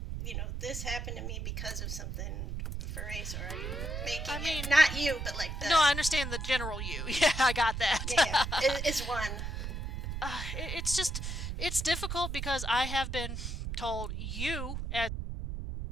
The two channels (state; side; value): noise; right; rumble, 4 dB below the sound